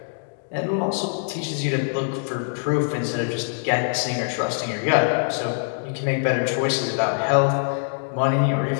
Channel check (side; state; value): right; silent; digital silence